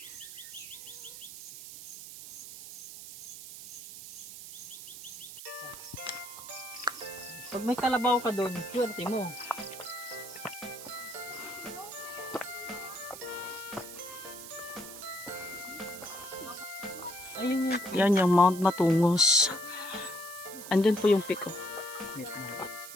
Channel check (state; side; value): noise; right; hiss, 12 dB below the sound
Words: Pag may kalabaw ka doon, swerte mo. Ayun. Yan yung Mount Matungos. Andun po yung peak. Oh.